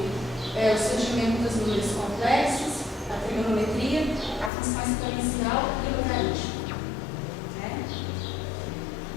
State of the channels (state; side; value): drops out; right; at 4.5 s